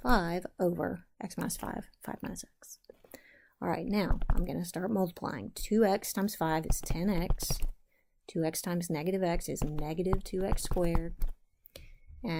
5 over x minus 5, 5 minus x. All right, now I'm going to start multiplying. 2x times 5 is 10x. 2x times negative x is negative 2x squared.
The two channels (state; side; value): identical; both; correlation 1.00